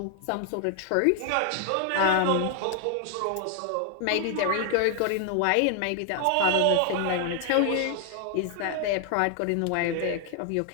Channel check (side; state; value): both; different; correlation 0.00